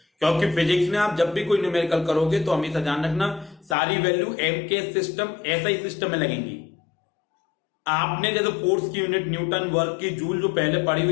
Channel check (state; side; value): drops out; right; at 3.8 s